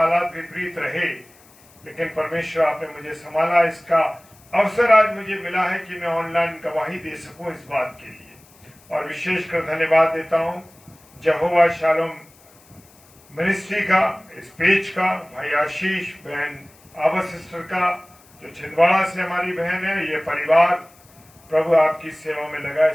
विपरीत रहे, लेकिन परमेश्वर आपने मुझे संभाला। इसका अवसर आज मुझे मिला है कि मैं ऑनलाइन गवाही दे सकूं इस बात के लिए, और विशेषकर धन्यवाद देता हूं यहोवा शालोम मिनिस्ट्री का, इस पेज का, भाई आशीष, बहन आबा सिस्टर का, जो छिंदवाड़ा से हमारी बहन है, ये परिवार प्रभु आपकी सेवा में लगा,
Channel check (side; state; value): left; noise; hiss, 28 dB below the sound